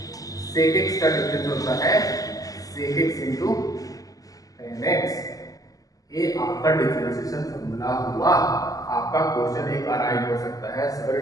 sec x का डिफरेंस होता है sec x into tan x. ये आपका डिफरेंशिएशन फॉर्मूला हुआ। आपका क्वेश्चन एक अराइव हो सकता है,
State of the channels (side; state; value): right; late; 0.17 ms